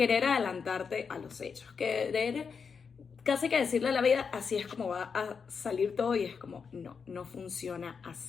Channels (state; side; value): quieter; right; 5.9 dB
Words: adelantarte a los hechos, querer casi que decirle a la vida, así es como va a salir todo, y es como, no funciona